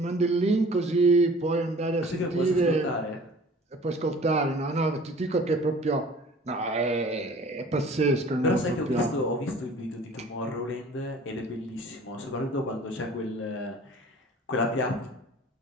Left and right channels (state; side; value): normal; both; correlation 0.48